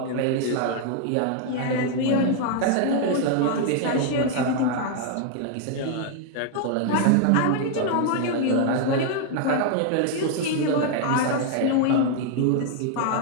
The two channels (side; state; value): both; different; correlation 0.00